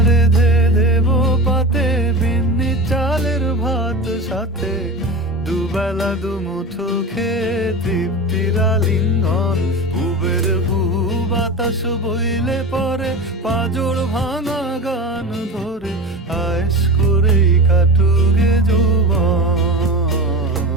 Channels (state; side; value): normal; both; correlation 0.28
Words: ধে দেব পাতে, বিন্নি চালের ভাত সাথে, দুবেলা দুমুঠো খেয়ে তৃপ্তির আলিঙ্গন। বুবের বুহু বাতাস বইলে পরে, পাজর ভাঙা গান ধরে আয়েস করেই কাটুগে যৌবন।